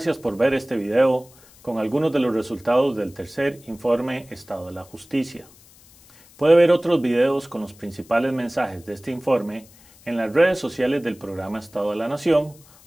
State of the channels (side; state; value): left; noise; hiss, 26 dB below the sound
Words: por ver este video con algunos de los resultados del tercer informe Estado de la Justicia. Puede ver otros videos con los principales mensajes de este informe en las redes sociales del programa Estado de la Nación